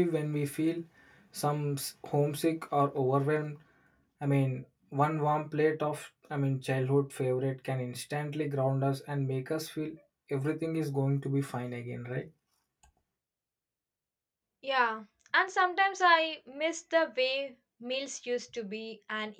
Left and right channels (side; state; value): both; identical; correlation 1.00